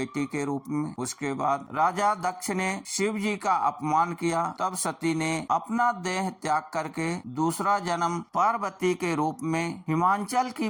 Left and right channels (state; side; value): identical; both; correlation 1.00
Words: के रूप में। उसके बाद राजा दक्ष ने शिव जी का अपमान किया, तब सती ने अपना देह त्याग करके दूसरा जन्म पार्वती के रूप में हिमांचल की